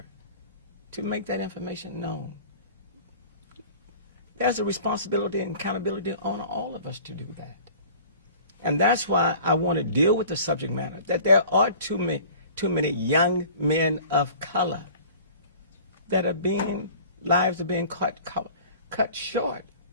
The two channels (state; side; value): inverted; both; correlation -0.45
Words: to make that information known. There's a responsibility and accountability on all of us to do that. And that's why I want to deal with the subject matter, that there are too many young men of color that lives are being cut short